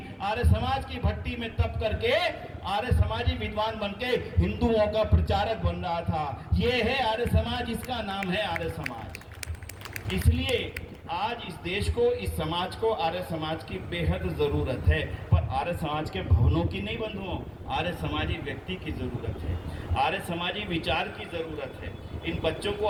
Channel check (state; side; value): identical; both; correlation 1.00